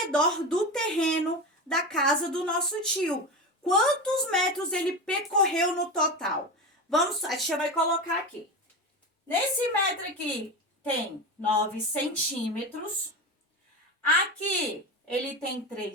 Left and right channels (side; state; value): both; normal; correlation 0.23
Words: do terreno da casa do nosso tio. Quantos metros ele percorreu no total? A tia vai colocar aqui. Nesse metro aqui tem 9 centímetros. Aqui ele tem